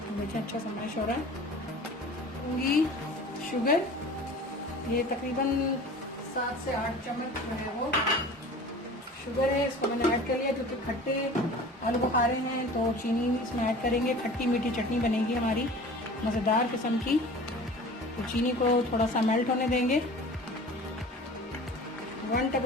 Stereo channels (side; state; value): both; normal; correlation 0.41